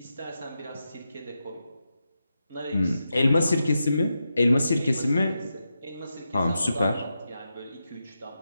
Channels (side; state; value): both; inverted; correlation -0.88